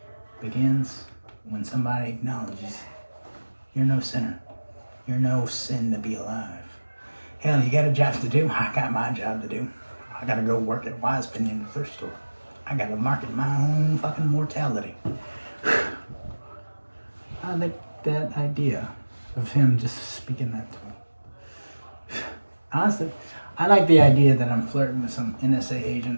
begins when somebody acknowledges you're no sinner. You're no sin to be alive. Hell, you got a job to do. I got my job to do. I gotta go work at Wise Penny in the thrift store. I gotta market my own fucking mortality. I like that idea of him just speaking that to me. Honestly, I like the idea that I'm flirting with some NSA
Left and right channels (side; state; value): both; inverted; correlation -1.00